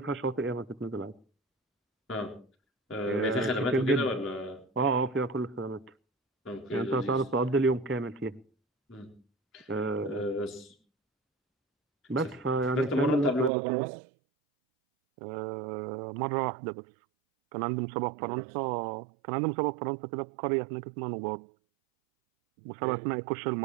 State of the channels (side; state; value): left; drops out; at 13.5 s